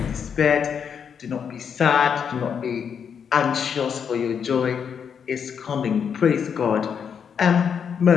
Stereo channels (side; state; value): right; quieter; 7.2 dB